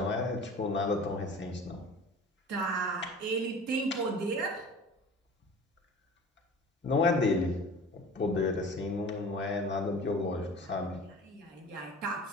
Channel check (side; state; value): both; normal; correlation 0.41